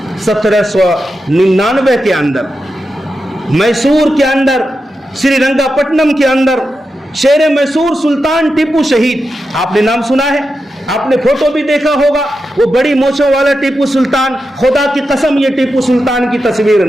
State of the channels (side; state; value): both; normal; correlation 0.89